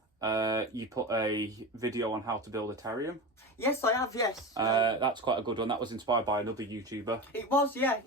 You put a video on how to build a terrarium. Yes, I have, yes. That's quite a good one. That was inspired by another YouTuber. It was, yeah.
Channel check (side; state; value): both; normal; correlation 0.25